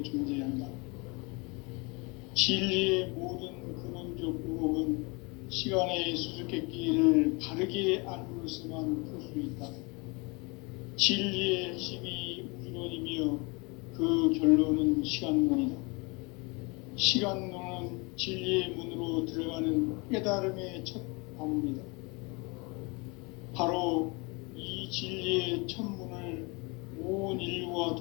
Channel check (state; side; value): quieter; right; 28.7 dB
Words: 존재한다. 진리의 모든 근원적 의혹은 시간의 수수께끼를 바르게 알므로서만 풀 수 있다. 진리의 핵심이 우주론이며 그 결론은 시간론이다. 시간론은 진리의 문으로 들어가는 깨달음의 첫 방문이다. 바로 이 진리의 첫 문을 온 인류가